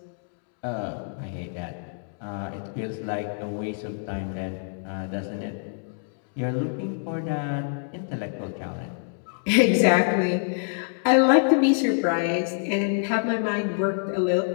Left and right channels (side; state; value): right; silent; digital silence